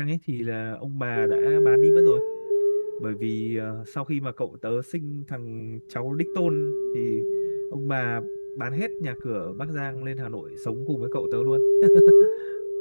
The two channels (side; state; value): both; inverted; correlation -1.00